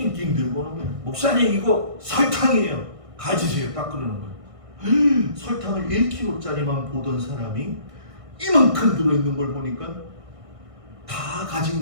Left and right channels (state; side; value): late; left; 1.6 ms